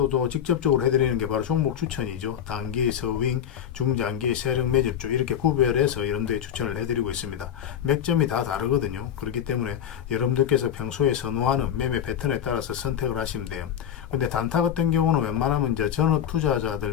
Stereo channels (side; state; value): right; quieter; 9.4 dB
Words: 또 직접적으로 해드리는 게 바로 종목 추천이죠. 단기, 서윙, 중장기, 세력 매집주 이렇게 구별해서 여러분들이 추천을 해드리고 있습니다. 맥점이 다 다르거든요. 그렇기 때문에 여러분들께서 평소에 선호하는 매매 패턴에 따라서 선택을 하시면 돼요. 근데 단타 같은 경우는 웬만하면 이제 전업